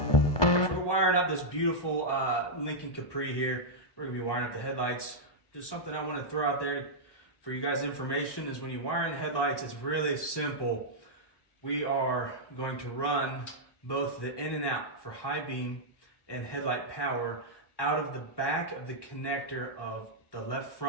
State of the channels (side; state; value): right; late; 1.2 ms